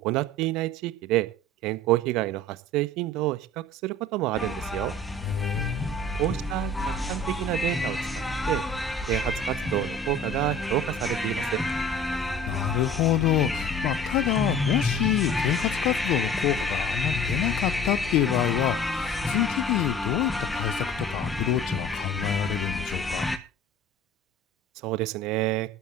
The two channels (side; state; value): both; normal; correlation 0.44